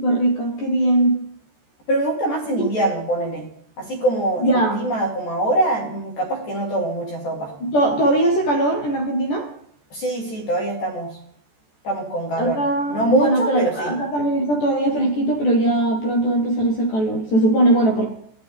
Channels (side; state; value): right; late; 14 ms